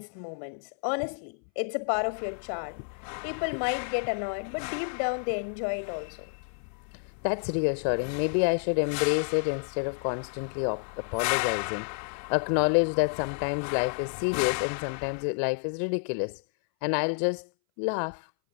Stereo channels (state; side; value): silent; right; 58 dB below the other